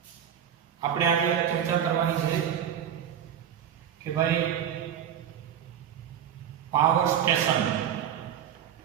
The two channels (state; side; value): quieter; left; 9.4 dB